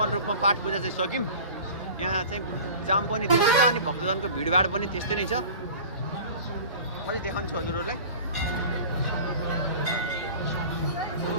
रूपमा पाठ पूजा चाहिँ सक्यौँ यहाँ चाहिँ जाम पनि त्यस्तै छ अनि भक्तजनको भिडभाड पनि त्यस्तै नै छ म चाहिँ देखाउँछु हजुरहरूलाई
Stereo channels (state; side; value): inverted; both; correlation -0.39